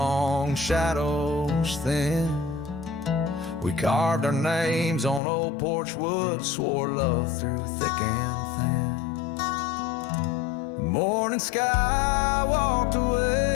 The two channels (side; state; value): right; drops out; at 5.2 s